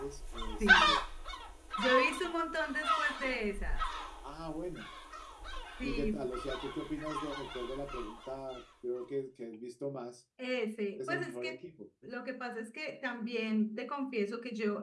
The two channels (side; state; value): both; identical; correlation 1.00